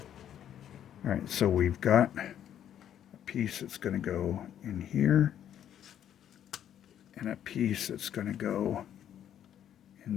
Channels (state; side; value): quieter; right; 10.2 dB